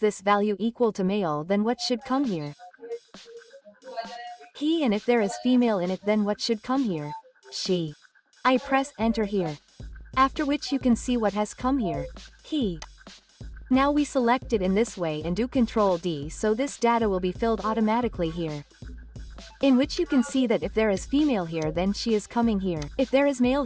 value equal to male then what should come here? He and if there is female in it then what should come here? She. I press enter here. After which you can see what has come here. He. Now we select it in this way and do Ctrl D so this data will be filled automatically here. In which you can see that if there is female here then she is coming here. If there is male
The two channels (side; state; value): both; identical; correlation 1.00